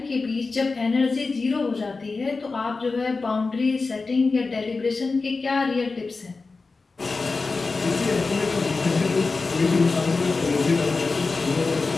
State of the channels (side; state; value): right; quieter; 4.0 dB